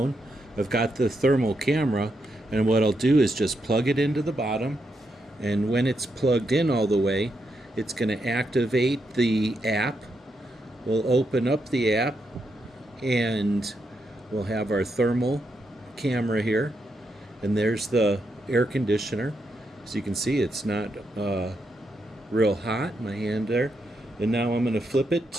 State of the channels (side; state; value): both; normal; correlation 0.82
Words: I've got the thermal camera, and what I'll do is just plug it into the bottom, and when it's plugged in all the way, it's going to activate the app. We'll open up the app and we'll have our thermal camera here, and there's the air conditioner. So you can see it's not real hot, my hand there. And now I'm going to flip it